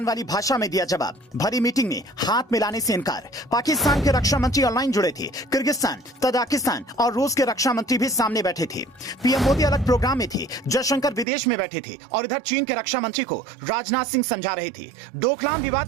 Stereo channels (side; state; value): left; drops out; at 11.2 s